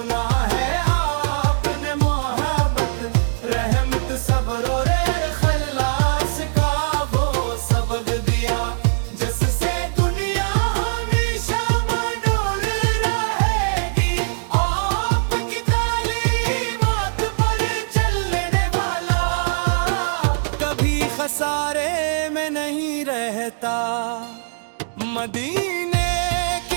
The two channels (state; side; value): silent; left; digital silence